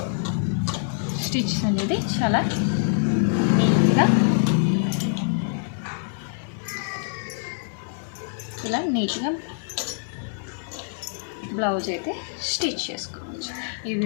స్టిచ్ అనేది చాలా నీట్గా ఇలా నీట్గా బ్లౌజ్ అయితే స్టిచ్ చేసుకోవచ్చు. ఈ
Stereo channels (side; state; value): right; silent; digital silence